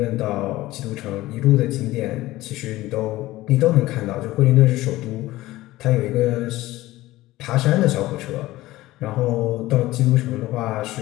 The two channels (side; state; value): right; quieter; 17.4 dB